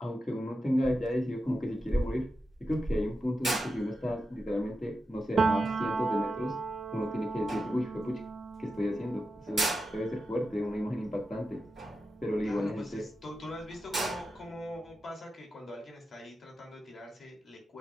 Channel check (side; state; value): both; normal; correlation 0.90